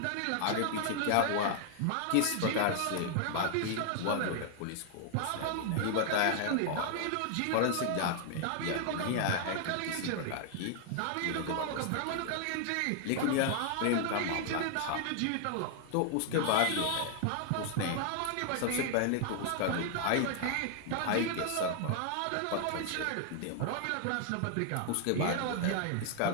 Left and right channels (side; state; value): both; different; correlation 0.00